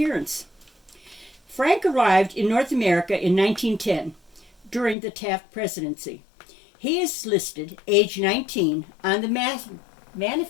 Frank arrived in North America in 1910 during the Taft presidency. He is listed age 19 on the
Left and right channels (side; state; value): right; drops out; at 5.0 s